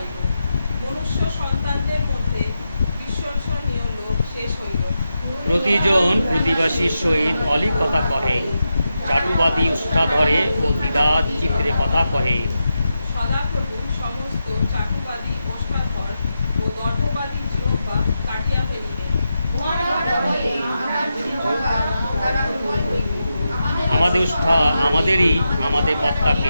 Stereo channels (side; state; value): both; inverted; correlation -0.88